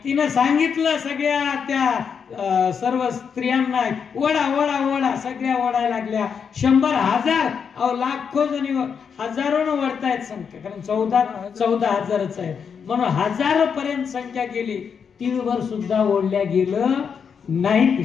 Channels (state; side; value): quieter; right; 6.7 dB